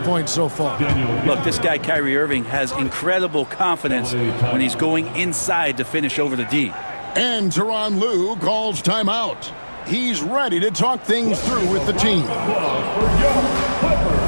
so far. Look, this guy, Kyrie Irving, has incredible confidence when he's going inside to finish over the D. And Tyronn Lue calls timeout. He's ready to talk things through with the team.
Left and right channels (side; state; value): both; inverted; correlation -1.00